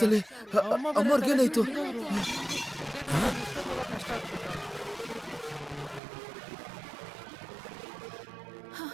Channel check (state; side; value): drops out; left; at 6.0 s